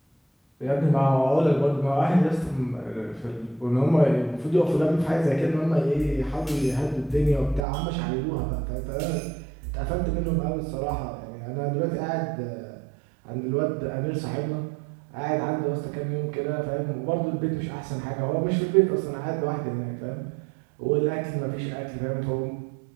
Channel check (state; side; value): drops out; left; at 7.7 s